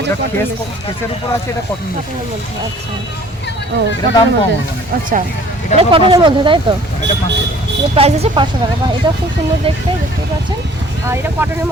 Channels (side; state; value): both; normal; correlation 0.53